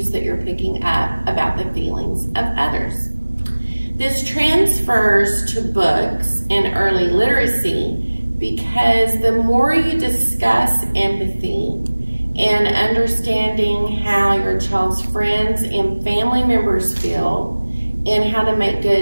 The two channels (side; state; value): both; inverted; correlation -1.00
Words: that you're picking up about the feelings of others. This transfers to books in early literacy because the more you discuss empathy and understanding how your child's friends and family members feel and how to make